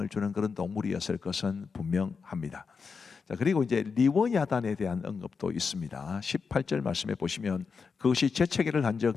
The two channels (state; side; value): quieter; right; 5.3 dB